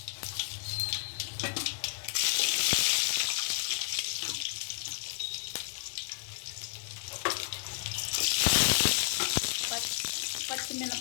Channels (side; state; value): right; silent; digital silence